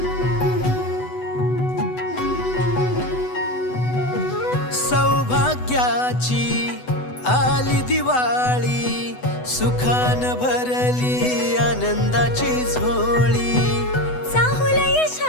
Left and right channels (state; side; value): late; right; 8.0 ms